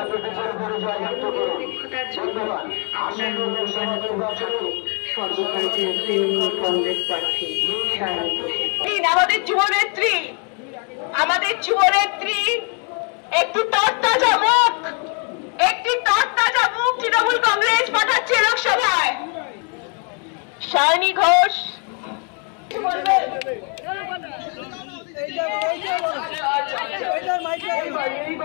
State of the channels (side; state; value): right; quieter; 38.0 dB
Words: সর্বভারতীয় তৃণমূল কংগ্রেস প্রার্থী সায়নী ঘোষের আমাদের যুবনেত্রী একটি তরতাজা মুখ তৃণমূল কংগ্রেস পাঠাচ্ছে লোকসভায়। সায়নী ঘোষ